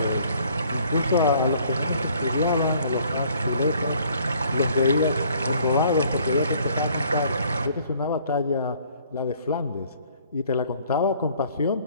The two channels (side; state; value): both; inverted; correlation -0.59